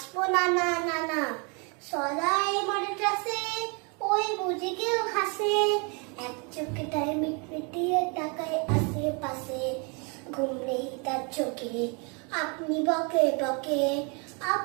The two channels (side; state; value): left; quieter; 33.6 dB